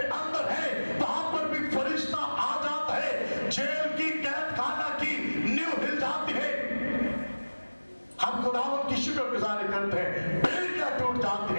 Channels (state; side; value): inverted; both; correlation -1.00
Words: अंदर है, वहां पर भी फरिश्ता आ जाता है, जेल की कैद खाना की नींव हिल जाती है। हम खुदावंद की शुक्रगुजारी करते हैं, बेड़ियां टूट जाती